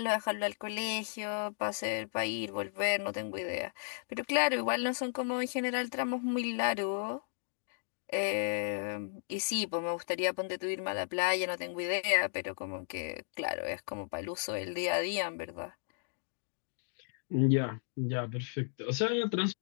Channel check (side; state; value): right; silent; digital silence